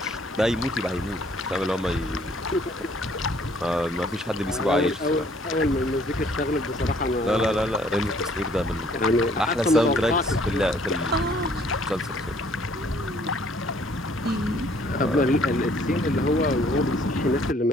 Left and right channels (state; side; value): normal; both; correlation 0.61